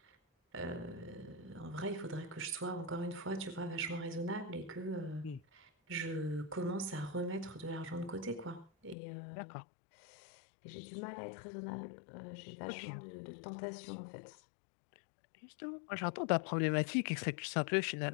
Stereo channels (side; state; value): right; drops out; at 9.0 s